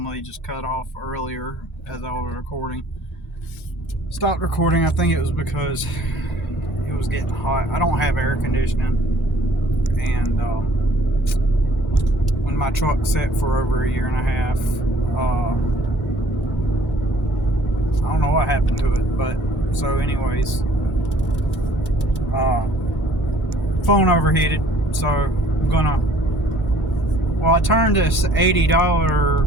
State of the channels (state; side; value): normal; both; correlation 0.56